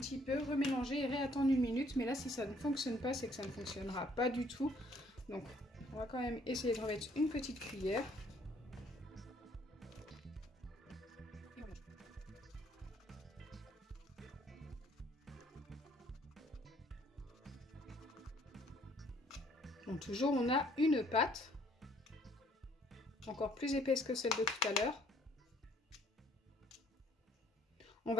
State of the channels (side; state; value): both; normal; correlation 0.62